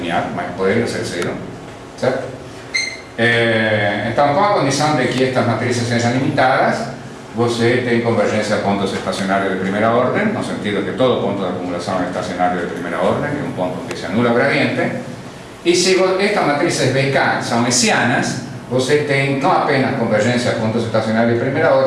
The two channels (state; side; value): identical; both; correlation 1.00